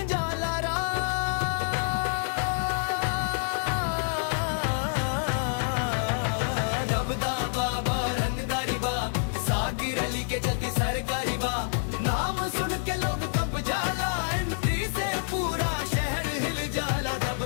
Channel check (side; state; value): right; silent; digital silence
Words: जाला रा। दबदा बाबा रंगदारी बा, साकिर अली के चलती सरकारी बा। नाम सुन के लोग कब जाला, एंट्री से पूरा शहर हिल जाला।